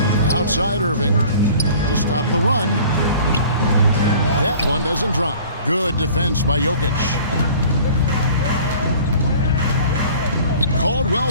Outside Irving to stop the run. That one doesn't drop. Good defense by Jokic.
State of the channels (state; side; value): inverted; both; correlation -0.47